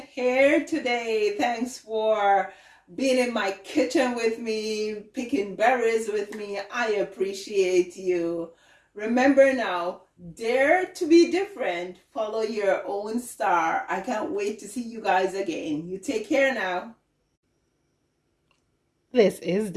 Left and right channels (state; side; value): identical; both; correlation 1.00